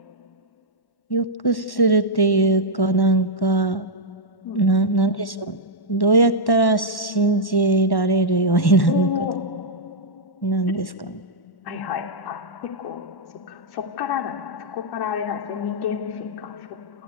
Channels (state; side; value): late; right; 1.1 ms